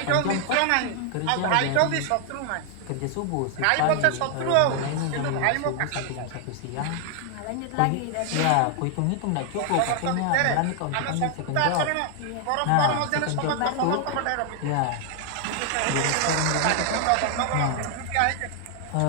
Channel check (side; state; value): both; different; correlation 0.00